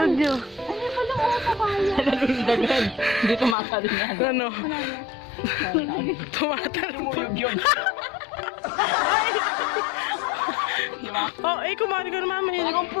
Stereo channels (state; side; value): drops out; right; at 3.6 s